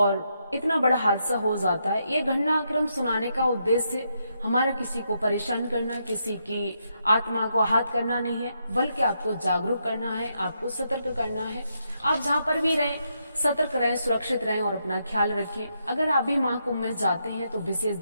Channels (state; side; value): inverted; both; correlation -0.80